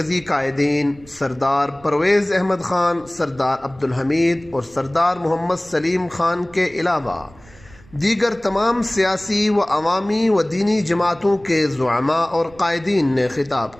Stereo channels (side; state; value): right; noise; rumble, 25 dB below the sound